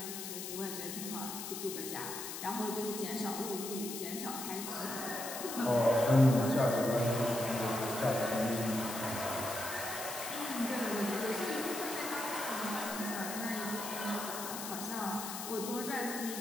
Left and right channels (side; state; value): left; noise; hiss, 7 dB below the sound